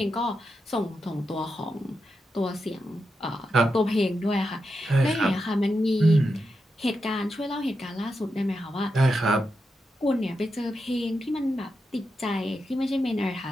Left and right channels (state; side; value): normal; both; correlation 0.87